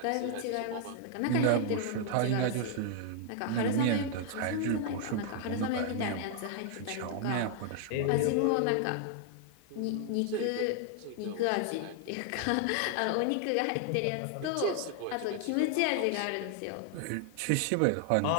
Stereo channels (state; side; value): different; both; correlation 0.00